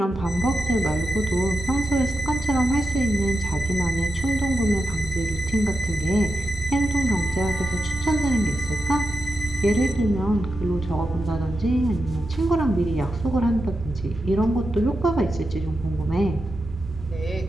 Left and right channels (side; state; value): both; normal; correlation 0.89